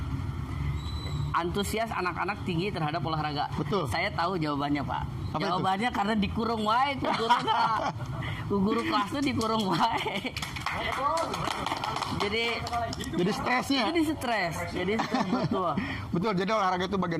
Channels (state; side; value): identical; both; correlation 1.00